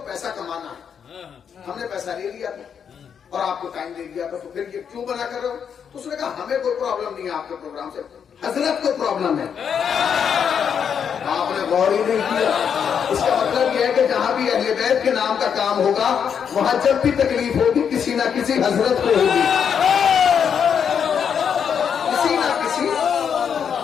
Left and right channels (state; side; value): quieter; right; 7.5 dB